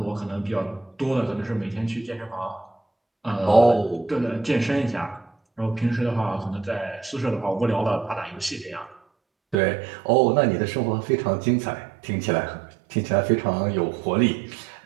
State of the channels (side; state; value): left; drops out; at 9.6 s